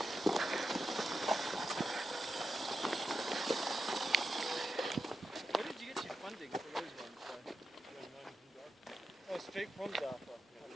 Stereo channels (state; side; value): normal; both; correlation 0.89